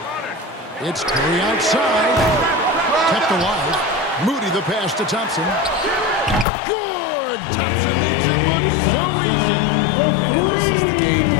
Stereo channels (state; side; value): drops out; right; at 6.5 s